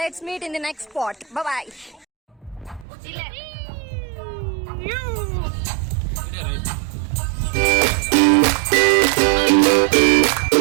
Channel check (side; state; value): left; drops out; at 2.9 s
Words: meet in the next spot. Bye bye.